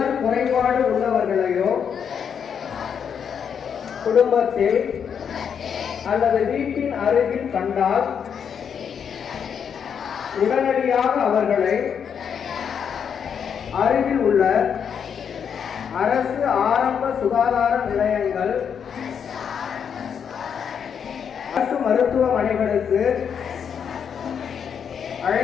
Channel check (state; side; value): quieter; right; 7.5 dB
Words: குறைபாடு உள்ளவர்களையோ குடும்பத்தில் அல்லது வீட்டின் அருகில் கண்டால் உடனடியாக அவர்களை அருகில் உள்ள அரசு ஆரம்ப சுகாதார நிலையங்கள், அரசு மருத்துவமனைகளுக்கு